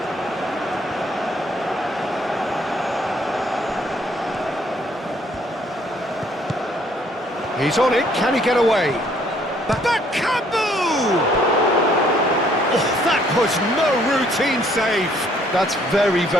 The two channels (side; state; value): both; normal; correlation 0.64